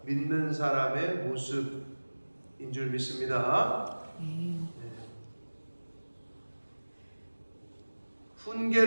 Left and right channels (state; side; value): inverted; both; correlation -1.00